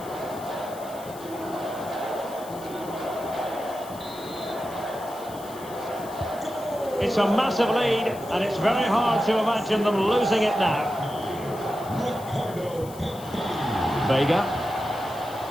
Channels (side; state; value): left; noise; hiss, 18 dB below the sound